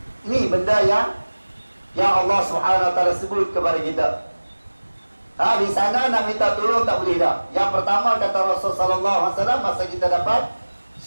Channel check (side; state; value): both; inverted; correlation -1.00